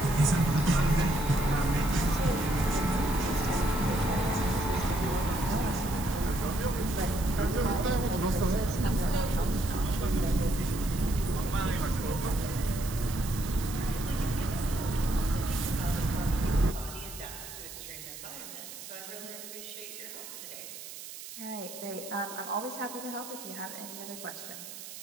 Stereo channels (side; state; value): right; noise; hiss, 12 dB below the sound